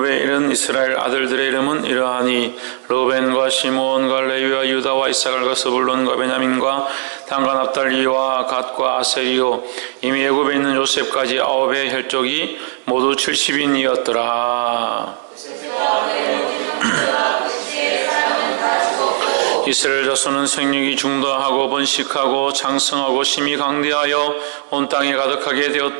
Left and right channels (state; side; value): silent; left; digital silence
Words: 이른 이스라엘 아들들의 이름은 이러하니 르벤과 시므온과 레위와 유다와 이사갈과 스불론과 베냐민과 단과 납달리와 갓과 아셀이요 이미 애굽에 있는 요셉까지 9의 혈족이 모두 70인이었더라. 이스라엘 자손은 생육이 중도하고 번식하고 장성하고 심히 강대하여 온 땅에 가득하게